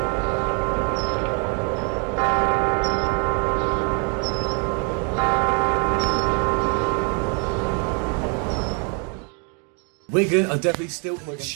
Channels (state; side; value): quieter; left; 37.3 dB